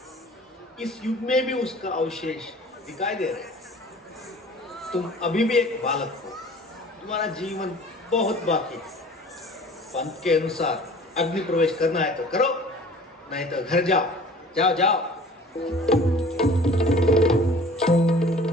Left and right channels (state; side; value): normal; both; correlation 0.47